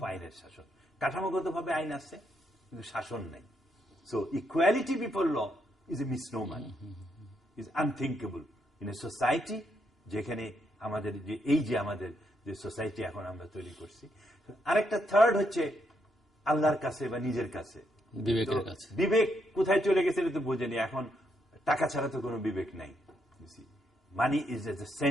আইনের শাসন। কাঠামোগতভাবে আইন আছে কিন্তু শাসন নাই। So equality before law is a misnomer, is unthinkable in a society যেখানে আমাদের যে সোসাইটি এখন আমরা তৈরি করছি। আরেকটা থার্ড হচ্ছে আল্লাহর কাছে বা নিজের কাছে, বিবেক কোথায় চলে গেছে এটা তো বোঝেনি। এখন টাকা ছাড়া তো কোনো বিবেক নাই। Money is at the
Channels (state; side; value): normal; both; correlation 0.77